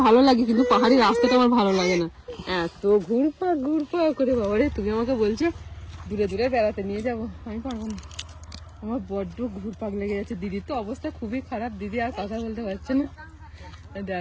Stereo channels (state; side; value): identical; both; correlation 1.00